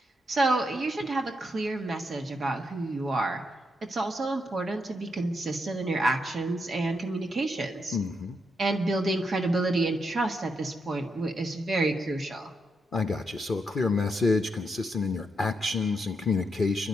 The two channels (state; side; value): normal; both; correlation 0.81